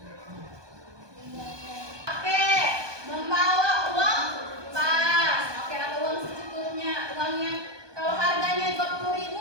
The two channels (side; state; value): left; late; 1.2 ms